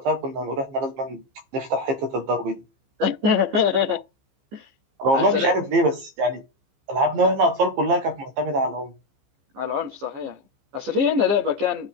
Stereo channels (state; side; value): late; left; 15 ms